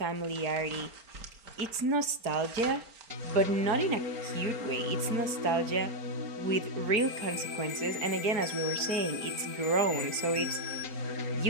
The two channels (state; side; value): late; left; 4.4 ms